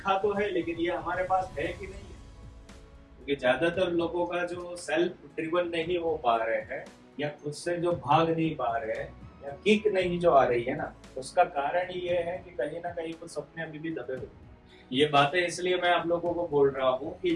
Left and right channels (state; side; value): identical; both; correlation 1.00